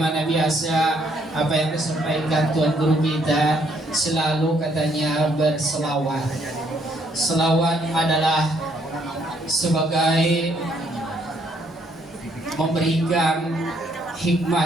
biasa, apa yang disampaikan Tuan Guru kita selalu katanya berselawat. Selawat adalah sebagai memberikan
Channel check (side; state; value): both; normal; correlation 0.69